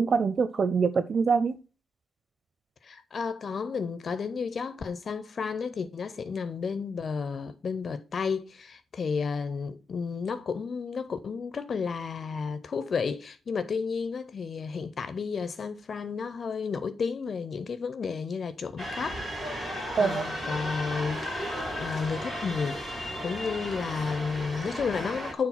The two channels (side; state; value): both; normal; correlation 0.83